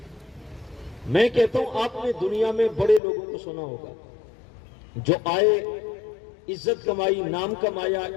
میں کہتا ہوں آپ نے دنیا میں بڑے لوگوں کو سنا ہوگا جو آئے، عزت کمائی، نام کمایا،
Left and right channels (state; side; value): drops out; right; at 3.0 s